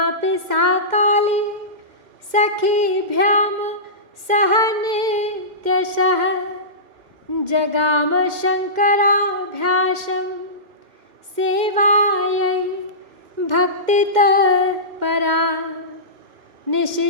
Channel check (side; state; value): left; late; 2.1 ms